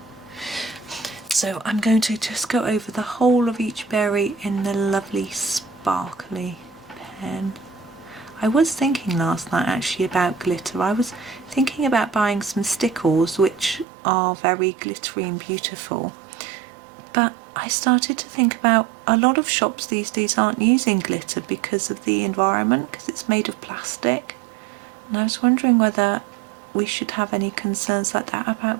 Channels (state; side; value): drops out; left; at 13.9 s